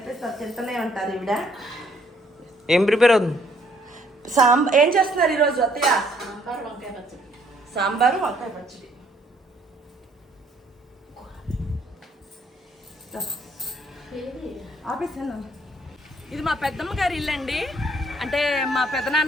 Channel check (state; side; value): normal; both; correlation 0.65